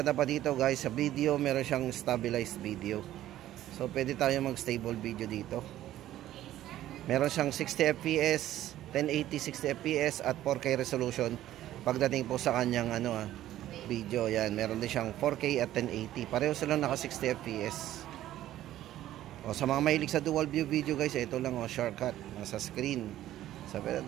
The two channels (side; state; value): left; quieter; 13.4 dB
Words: pa dito guys, sa video meron siyang stabilized video. So pwede tayo mag stable video dito. Meron siyang 60 fps, 1080 60 fps at 4K resolution pagdating po sa kanyang video. Yan, meron din siyang 4K at 1080. Pareho silang naka 60 fps. O sa mga mahilig sa dual view video guys, ito lang shortcut nasa screen. So pwede